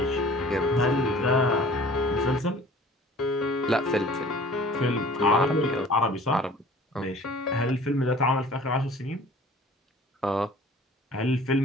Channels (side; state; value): both; normal; correlation 0.48